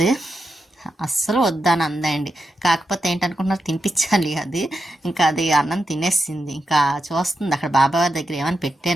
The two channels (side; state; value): both; normal; correlation 0.87